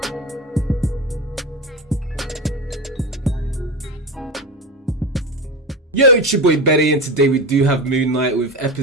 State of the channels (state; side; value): normal; both; correlation 0.23